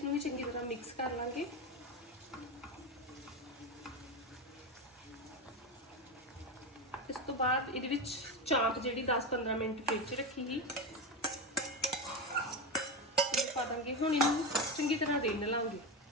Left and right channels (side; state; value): both; normal; correlation 0.16